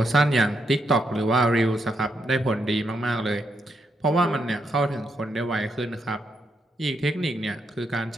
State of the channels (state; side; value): normal; both; correlation 0.80